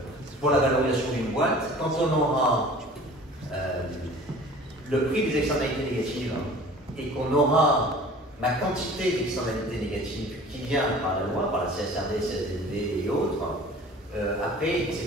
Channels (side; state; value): both; normal; correlation 0.45